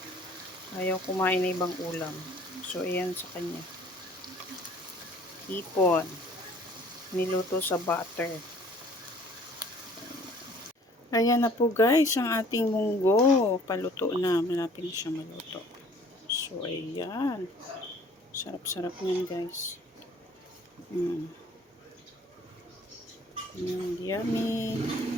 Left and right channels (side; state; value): both; normal; correlation 0.54